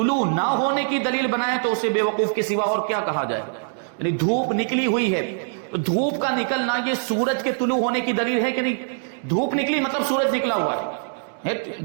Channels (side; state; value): left; silent; digital silence